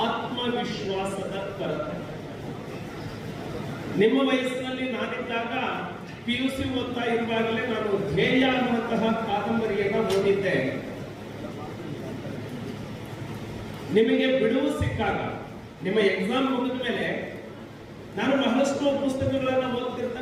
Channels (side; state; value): both; identical; correlation 1.00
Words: ಆತ್ಮವಿಶ್ವಾಸದ ಕೊರತೆ. ನಿಮ್ಮ ವಯಸ್ಸಿನಲ್ಲಿ ನಾನಿದ್ದಾಗ PUC ಓದ್ತಾ ಇರುವಾಗಲೇ ನಾನು ಧ್ಯೇಯ ಅನ್ನುವಂತಹ ಕಾದಂಬರಿಯನ್ನ ಓದಿದ್ದೆ. ನಿಮಗೆ ಬಿಡುವು ಸಿಕ್ಕಾಗ, ನಿಮ್ಮ ಎಕ್ಸಾಮ್ ಮುಗಿದ ಮೇಲೆ ನಾನು ಬಹಳಷ್ಟು ಪುಸ್ತಕಗಳನ್ನ